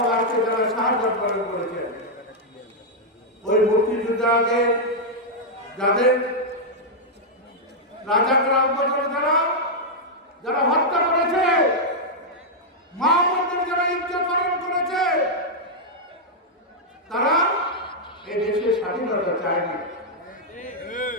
আজকে যারা শাহাদাত বরণ করেছেন ওই মুক্তিযোদ্ধাদের যাদের রাজাকরাম যারা হত্যা করেছে, মা বোনদের যারা ইজ্জত হরণ করেছে, তারা এই দেশের স্বাধীনতা চায়নি।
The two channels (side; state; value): both; normal; correlation -0.04